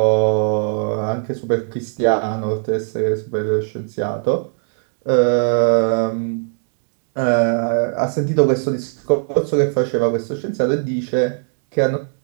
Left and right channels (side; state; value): left; silent; 66 dB below the other